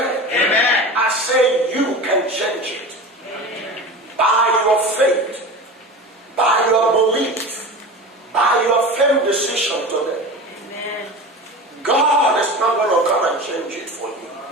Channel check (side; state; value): both; normal; correlation 0.31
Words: Amen. I say you can change it. By your faith, by your belief, by your firm decision today. God is not going to come and change it for you.